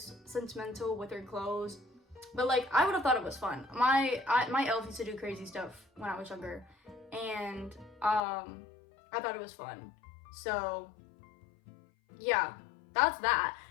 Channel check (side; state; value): right; drops out; at 8.2 s